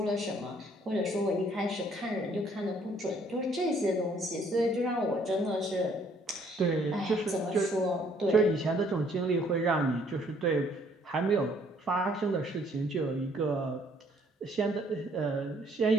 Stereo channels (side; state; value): both; normal; correlation 0.63